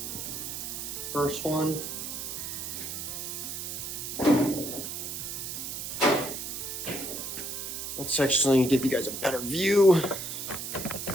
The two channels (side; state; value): right; noise; hiss, 5 dB below the sound